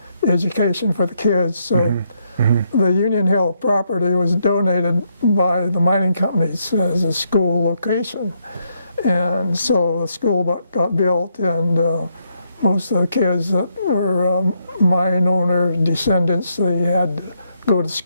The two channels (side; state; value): both; inverted; correlation -0.77